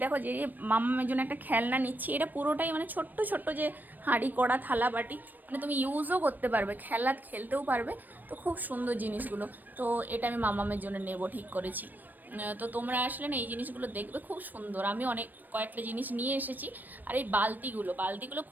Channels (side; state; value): left; late; 0.088 ms